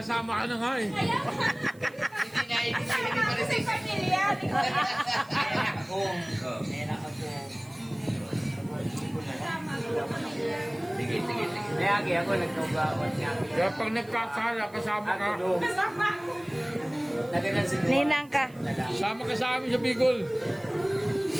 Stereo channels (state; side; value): noise; right; hiss, 27 dB below the sound